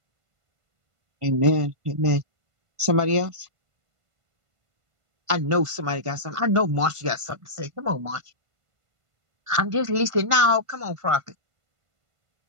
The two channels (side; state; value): left; late; 1.5 ms